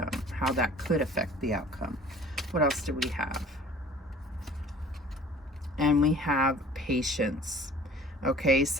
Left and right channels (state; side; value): normal; both; correlation 0.47